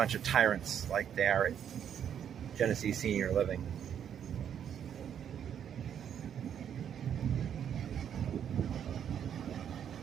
of tyrants like they are at Genesee Senior Living.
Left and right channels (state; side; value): quieter; left; 8.9 dB